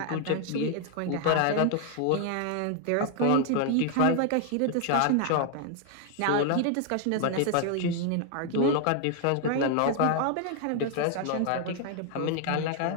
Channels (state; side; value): different; both; correlation 0.00